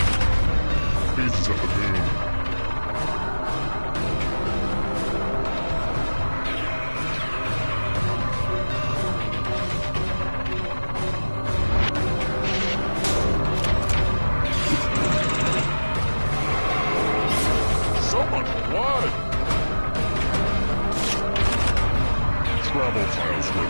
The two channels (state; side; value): inverted; both; correlation -1.00